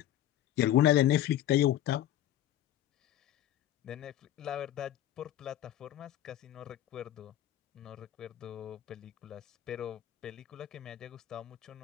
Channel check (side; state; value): right; quieter; 12.5 dB